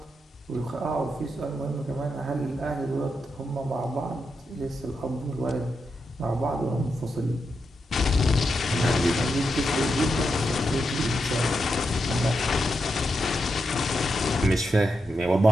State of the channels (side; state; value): both; normal; correlation 0.85